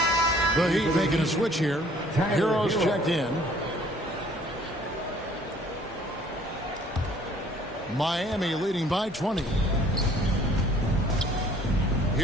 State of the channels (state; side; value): normal; both; correlation 0.57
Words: The Heat making a switch here. Heroes checked in. Miami leading by 20.